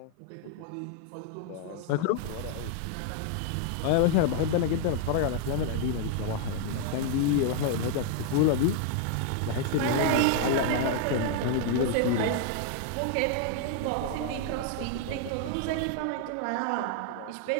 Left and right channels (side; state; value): both; different; correlation 0.00